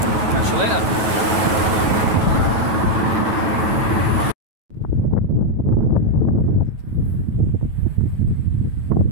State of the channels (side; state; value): left; late; 9.2 ms